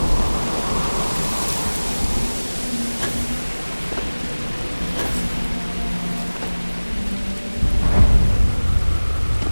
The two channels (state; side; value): inverted; both; correlation -1.00